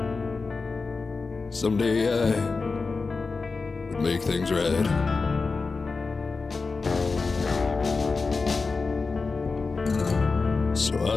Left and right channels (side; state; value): right; quieter; 4.2 dB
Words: someday I would make things right. So I